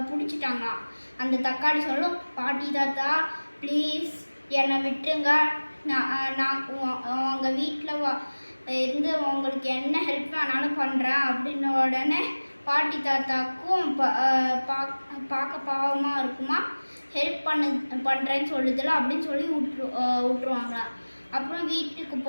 பிடிச்சிட்டாங்களாம். அந்த தக்காளி சொல்லும், பாட்டி தாத்தா ப்ளீஸ் என்னை விட்டுருங்க, நான் உங்கள் வீட்டில் இருந்து உங்களுக்கு என்ன ஹெல்ப் வேணாலும் பண்ணுறேன் அப்படின்ன உடனே பாட்டி தாத்தாக்கும் பார்க்க பாவமாக இருக்குமா. ஹெல்ப் பண்ணுறேன்னு சொல்லுதில்ல அப்படின்னு சொல்லி விட்டுருவாங்களா. அப்புறம் வீட்டுக்கு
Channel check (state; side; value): inverted; both; correlation -1.00